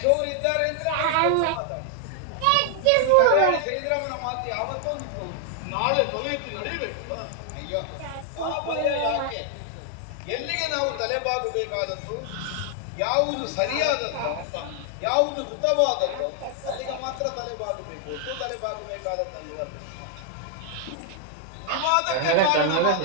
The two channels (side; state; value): both; different; correlation 0.00